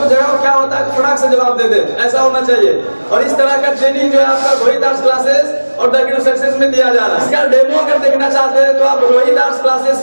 जवाब क्या होता है फटाक से जवाब दे दे, ऐसा होना चाहिए। और इस तरह का ट्रेनिंग जो है आपका रोहित आर्ट्स क्लासेस और द की टू सक्सेस में दिया जा रहा है। इसका डेमो अगर देखना चाहते हैं तो आप रोहित आर्ट्स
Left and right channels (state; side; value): inverted; both; correlation -1.00